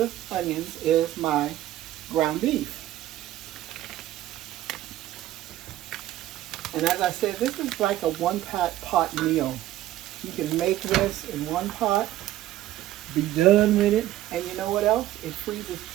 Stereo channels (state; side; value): quieter; left; 14.2 dB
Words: onions is my ground beef. And as I said, this is like a one-pot meal. You can make this in one pot, be done with it, and you know what else? It freezes